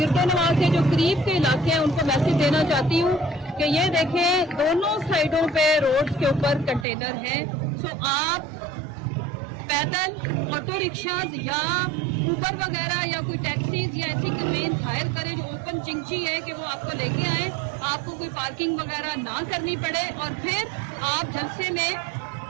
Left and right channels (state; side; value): drops out; left; at 6.9 s